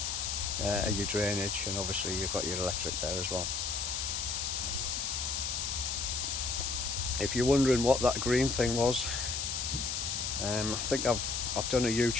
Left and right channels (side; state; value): left; noise; hiss, 1 dB below the sound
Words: your drainage, and obviously you've got your electric there as well. If you're wondering what that green thing was, I think I've done a